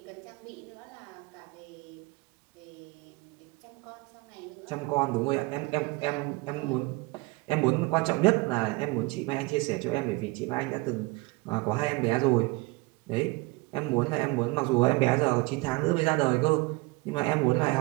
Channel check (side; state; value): left; quieter; 24.0 dB